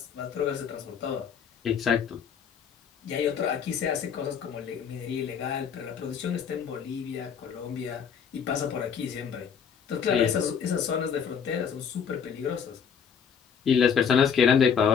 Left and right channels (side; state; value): right; quieter; 7.2 dB